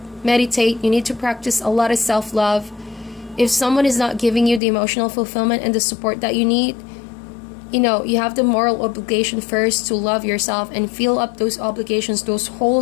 meditate. You need to practice a lot of self-love. If someone is not giving you the emotional fulfillment and the support that you need, you have the moral obligation first to love yourself and fill up those obligations, those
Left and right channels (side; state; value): right; drops out; at 4.6 s